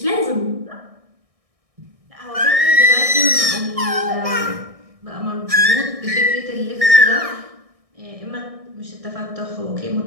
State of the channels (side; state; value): left; late; 1.6 ms